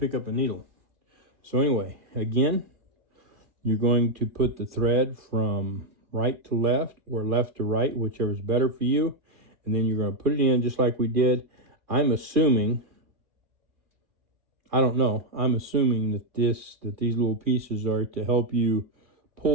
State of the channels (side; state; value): left; late; 2.4 ms